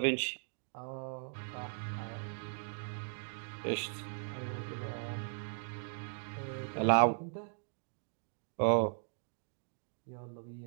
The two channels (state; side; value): silent; left; 52 dB below the other